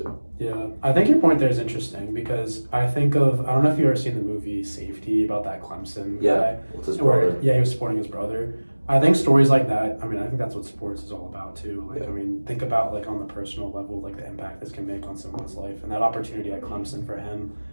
Yeah, I think your point there is interesting because I don't know if you've ever seen the movie Safety about that Clemson guy. With his brother. He was supporting his brother. I think stories like that, I mean, I think that's what sports is all about too. Like, I mean, think about like on the personal level, like the impact this can make on someone's life, and that opportunity at Clemson for him,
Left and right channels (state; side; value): inverted; both; correlation -1.00